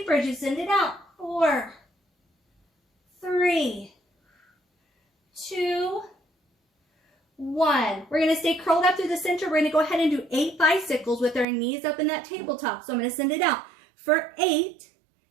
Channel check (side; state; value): left; drops out; at 11.5 s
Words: as you send it out. 4, 3, 2, 1. We're going to stay curled up through the center. We're going to go ahead and do 8 bicycles with our knees up in that tabletop. So I'm going to send it out for 8